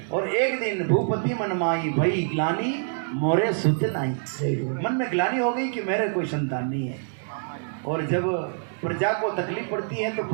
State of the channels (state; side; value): silent; left; digital silence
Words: और एक दिन भूपति मनमाई भई ग्लानि मोरे सुत नाई, मन में ग्लानि हो गई कि मेरे कोई संतान नहीं है। और जब प्रजा को तकलीफ पड़ती है तो